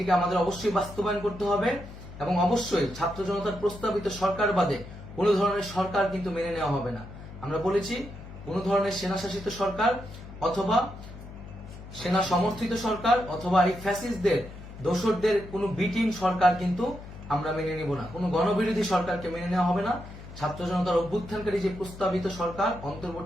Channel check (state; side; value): noise; left; hum, 14 dB below the sound